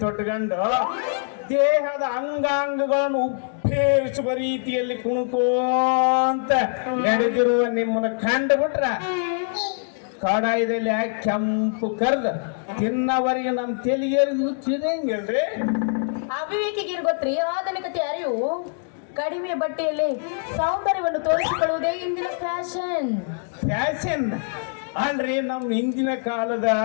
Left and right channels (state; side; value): silent; right; 63 dB below the other